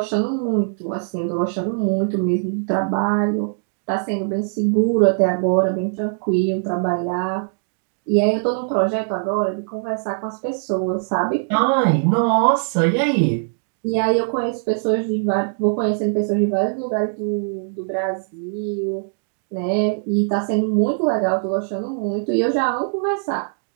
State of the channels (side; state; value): left; silent; digital silence